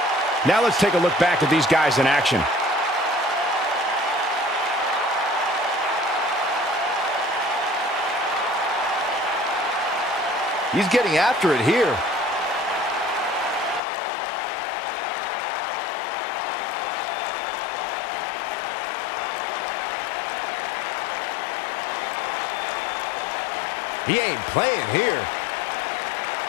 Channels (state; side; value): drops out; right; at 13.8 s